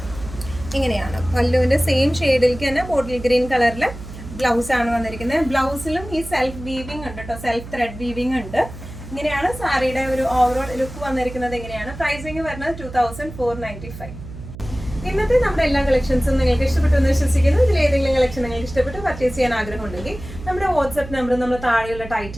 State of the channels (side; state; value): right; noise; hum, 13 dB below the sound